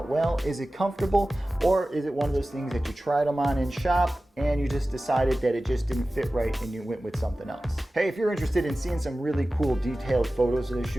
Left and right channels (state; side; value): normal; both; correlation 0.96